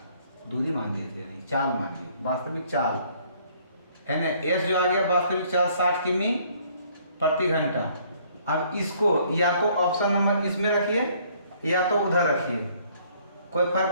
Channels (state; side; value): inverted; both; correlation -0.62